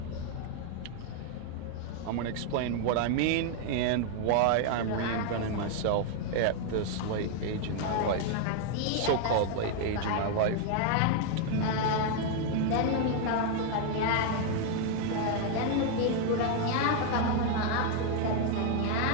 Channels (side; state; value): both; different; correlation 0.00